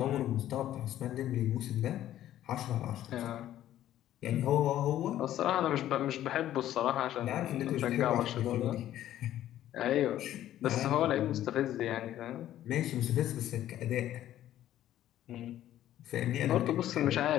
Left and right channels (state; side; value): quieter; right; 12.6 dB